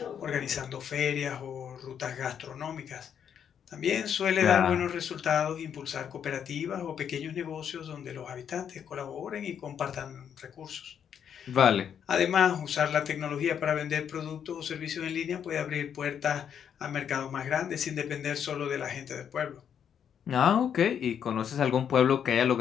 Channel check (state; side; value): quieter; right; 8.3 dB